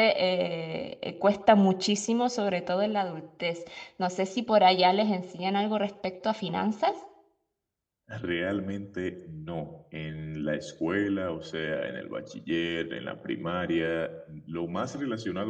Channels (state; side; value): identical; both; correlation 1.00